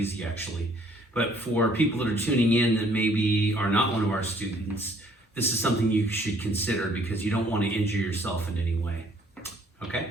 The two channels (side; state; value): both; normal; correlation 0.61